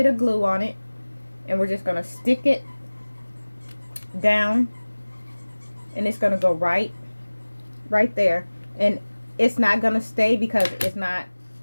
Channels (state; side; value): inverted; both; correlation -1.00